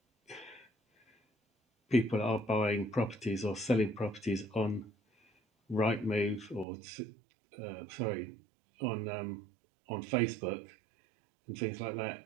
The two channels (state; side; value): drops out; left; at 6.7 s